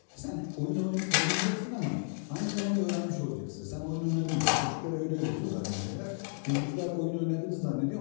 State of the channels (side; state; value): right; silent; digital silence